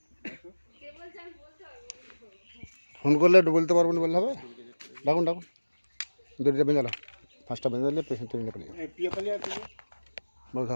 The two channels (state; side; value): inverted; both; correlation -1.00